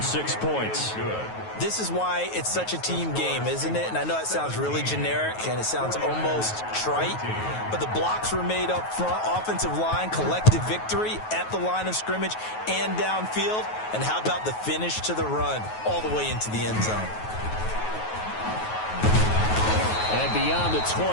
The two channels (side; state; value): right; late; 9.3 ms